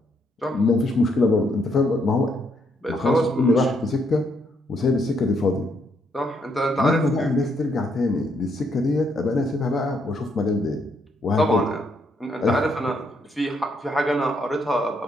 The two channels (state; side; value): normal; both; correlation 0.74